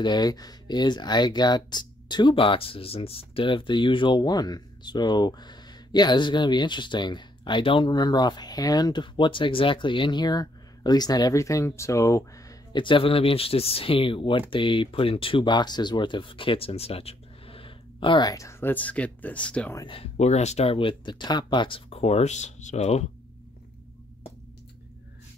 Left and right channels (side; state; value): both; normal; correlation 0.71